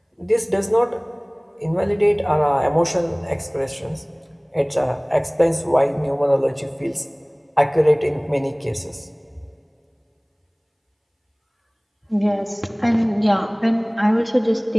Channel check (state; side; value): identical; both; correlation 1.00